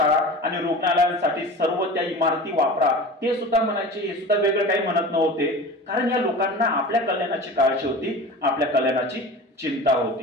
आणि रुग्णालयांसाठी सर्व त्या इमारती वापरा, ते सुद्धा म्हणायचे। हे सुद्धा वेगळं काही म्हणत नव्हते, कारण या लोकांना आपल्या कल्याणाची काळजी होती, आपल्या कल्याणाची चिंता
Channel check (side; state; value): both; normal; correlation 0.35